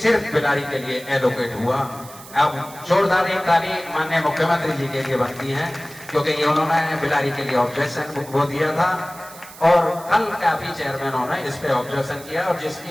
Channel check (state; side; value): noise; right; hiss, 18 dB below the sound